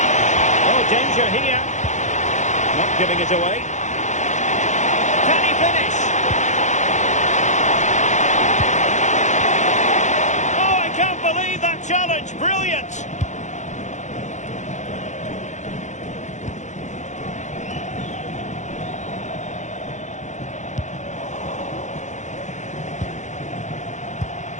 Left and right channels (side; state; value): right; late; 0.35 ms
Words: Oh, danger here. Not giving it away. Can he finish? Oh, I can't believe that challenge. Brilliant.